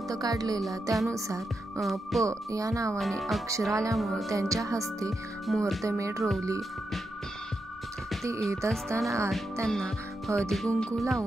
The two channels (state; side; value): normal; both; correlation 0.86